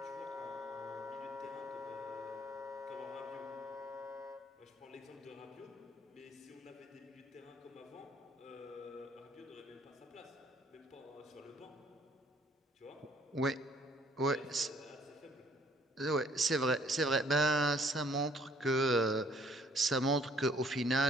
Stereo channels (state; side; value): normal; both; correlation 0.61